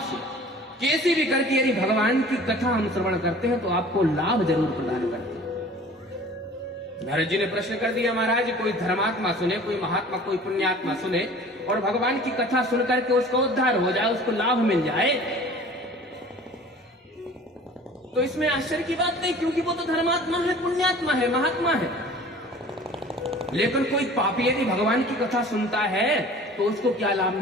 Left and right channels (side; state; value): both; normal; correlation 0.45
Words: से, कैसे भी करके यदि भगवान की कथा हम श्रवण करते हैं तो आपको लाभ जरूर प्रदान करते हैं। नारद जी ने प्रश्न कर दिया, महाराज कोई धर्मात्मा सुने, कोई महात्मा, कोई पुण्यात्मा सुने और भगवान की कथा सुनकर के उसका उद्धार हो जाए, उसको लाभ मिल जाए, तो इसमें आश्चर्य की बात नहीं, क्योंकि वो तो धर्मात्मा है, पुण्यात्मा है, महात्मा है। लेकिन कोई पापी यदि भगवान की कथा सुनता है तो उसको क्या लाभ